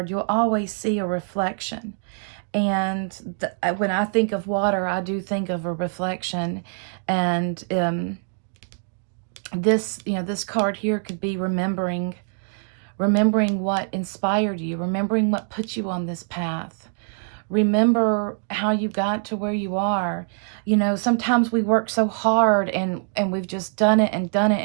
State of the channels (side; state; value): left; silent; digital silence